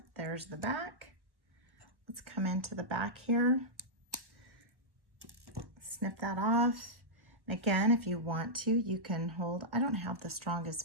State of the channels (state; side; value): late; left; 1.4 ms